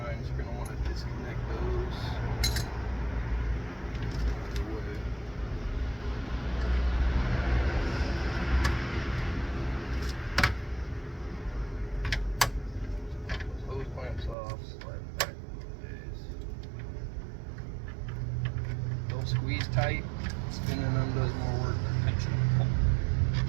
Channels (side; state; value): left; drops out; at 14.4 s